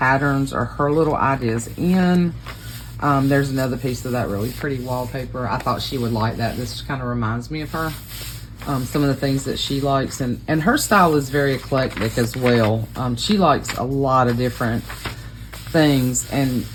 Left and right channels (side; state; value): both; identical; correlation 1.00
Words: or her little ideas in. There's another piece of that really pretty wallpaper. I thought she would like that. This kind of reminds me of her. Some of the things that she likes, and her style is very eclectic as well. She likes a lot of different things, and